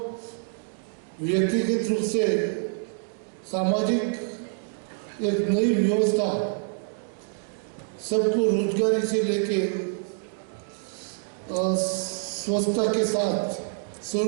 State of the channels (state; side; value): silent; left; digital silence